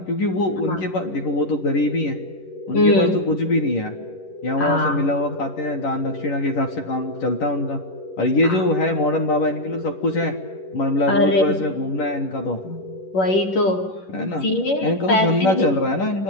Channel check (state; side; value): late; right; 11 ms